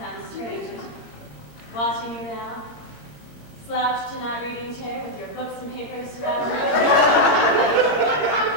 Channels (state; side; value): late; right; 17 ms